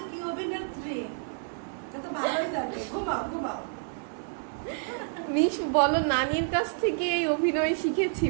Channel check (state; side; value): silent; left; digital silence